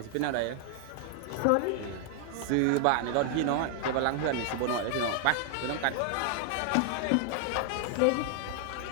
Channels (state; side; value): different; both; correlation 0.00